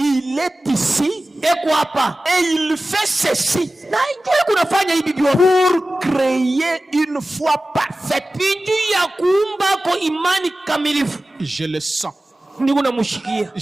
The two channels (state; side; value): normal; both; correlation 0.96